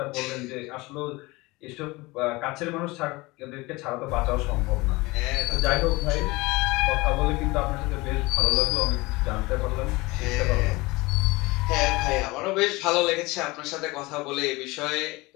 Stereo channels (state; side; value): quieter; right; 22.7 dB